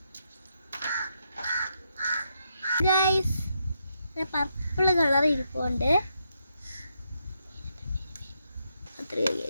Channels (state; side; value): inverted; both; correlation -0.80